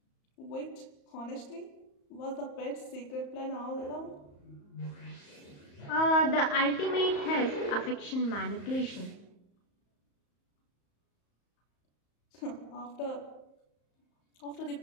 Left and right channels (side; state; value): right; late; 34 ms